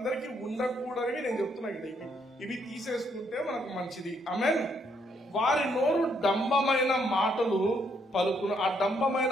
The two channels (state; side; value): normal; both; correlation 0.72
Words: ఉండకూడదని నేను చెప్తున్నా. ఇవి తీసేసుకుంటే మనకు మంచిది. ఆమేన్. వారి నోరు డంబమైన మాటలు పలుకును. ఆ